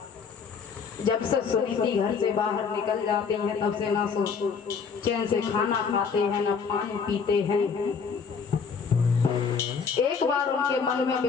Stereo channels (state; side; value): quieter; right; 5.9 dB